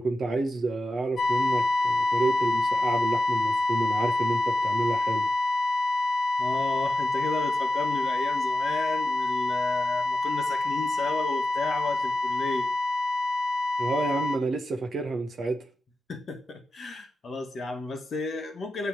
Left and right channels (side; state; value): both; normal; correlation 0.92